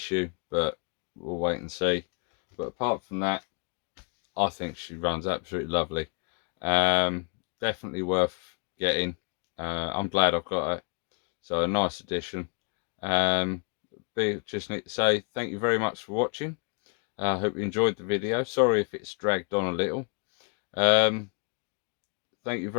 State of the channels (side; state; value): right; quieter; 38.0 dB